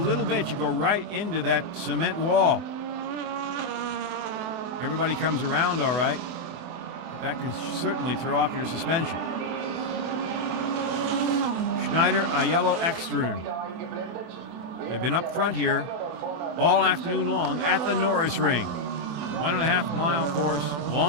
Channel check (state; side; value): late; left; 24 ms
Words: bit, you go right into that cement wall. Everybody comes around all right, but that can certainly throw off your suspension. Schneider, Aiello, Ekstrom. They've been up front here all afternoon long at the Norisring. 1.5 mile course,